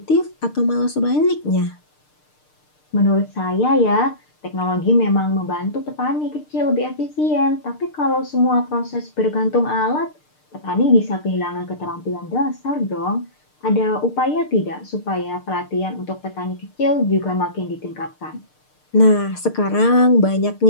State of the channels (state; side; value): late; right; 6.6 ms